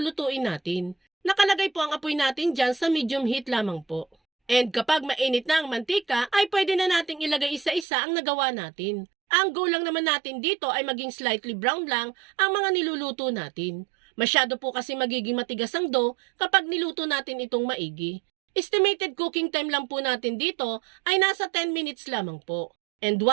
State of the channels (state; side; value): drops out; left; at 7.9 s